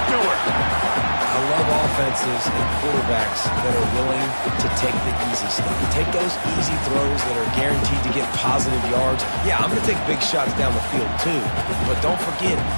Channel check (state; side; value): inverted; both; correlation -1.00